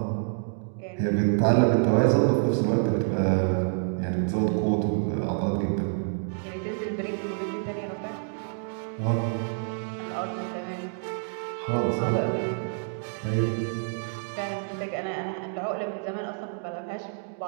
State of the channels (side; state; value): left; silent; 60 dB below the other